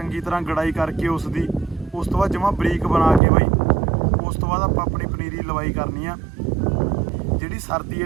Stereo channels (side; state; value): left; drops out; at 3.2 s